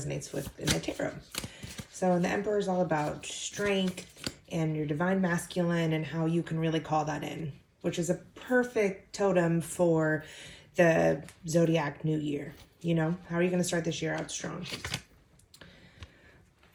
with in the tarot. So the Emperor is all about strength and your Divine Masculine and how you can really call that in, which is a perfect totem for the Zodiac New Year. You know, how are you going to start this year out strong?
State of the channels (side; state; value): both; identical; correlation 1.00